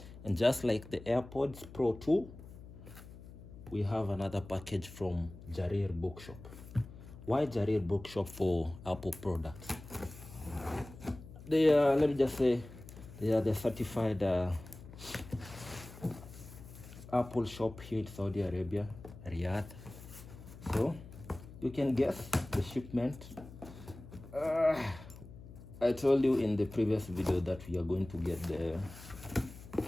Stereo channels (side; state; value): left; noise; hum, 16 dB below the sound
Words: And just like the AirPods Pro 2, we have another package from Jarir Bookshop. Why Jarir Bookshop for Apple products? They are, let me just say, they are the certified Apple shop here in Saudi Arabia, Riyadh. So you can guess the shipment. I told you in the previous video that we are going to get the